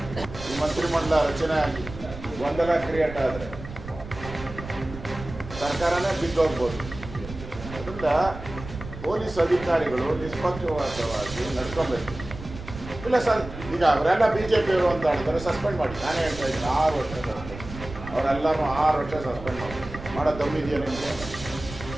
ಈ ಮಂತ್ರಿಮಂಡಲ ರಚನೆ ಆಗಿ ಗೊಂದಲ ಕ್ರಿಯೇಟ್ ಆದರೆ ಸರ್ಕಾರನೇ ಬಿದ್ದೋಗ್ಬೋದು. ಅದರಿಂದ ಪೊಲೀಸ್ ಅಧಿಕಾರಿಗಳು ನಿಷ್ಪಕ್ಷಪಾತವಾಗಿ ನಡ್ಕೊಬೇಕು. ಇಲ್ಲ ಸರ್, ಈಗ ಅವರೆಲ್ಲ ಬಿ ಜೆ ಪಿಯವರು ಅಂತ ಹೇಳ್ತಾರೆ, ಸಸ್ಪೆಂಡ್ ಮಾಡಿ. ನಾನೇ ಹೇಳ್ತಾ ಇದ್ದೀನಿ 6 ವರ್ಷ ಸಸ್ಪೆಂಡ್. ಅವರೆಲ್ಲರೂ 6 ವರ್ಷ ಸಸ್ಪೆಂಡ್ ಮಾಡೋ ದಮ್ಮಿದೆಯಾ ನಿಮಗೆ?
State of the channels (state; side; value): noise; right; rumble, 12 dB below the sound